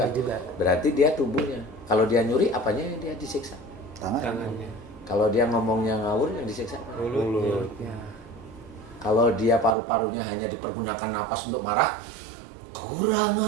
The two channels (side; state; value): left; drops out; at 9.8 s